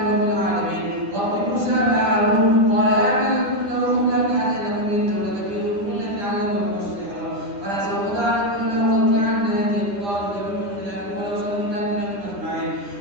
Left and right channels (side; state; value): left; late; 10 ms